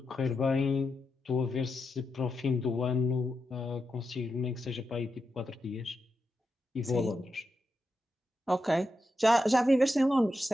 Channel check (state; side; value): normal; both; correlation 0.87